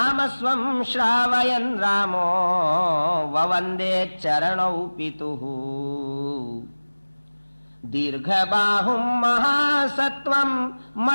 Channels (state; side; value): inverted; both; correlation -1.00